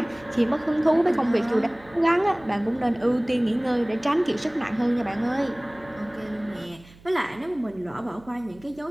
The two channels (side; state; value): right; noise; hum, 24 dB below the sound